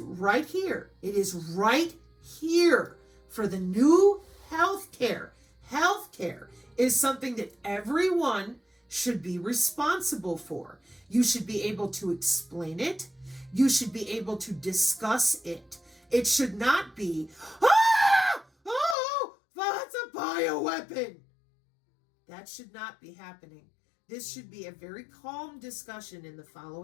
right here? It is right here for the new healthcare. Healthcare is something that everyone should be responsible for. You should be able to explain it. You should be able to discuss it. It should not be, oh, that's a bioweapon. That should not be happening. This should be a very calm discussion in the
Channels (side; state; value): right; drops out; at 18.9 s